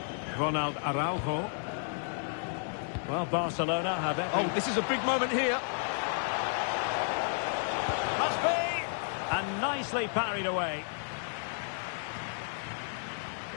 Ronald Araujo. Well, Barcelona have it. Oh, this is a big moment here. Must be! And nicely parried away.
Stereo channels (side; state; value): right; silent; digital silence